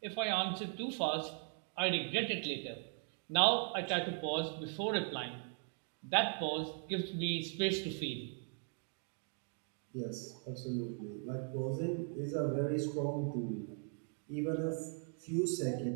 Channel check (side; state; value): left; silent; 52 dB below the other